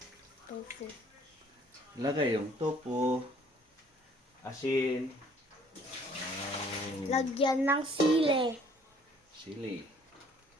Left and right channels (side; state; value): both; normal; correlation 0.58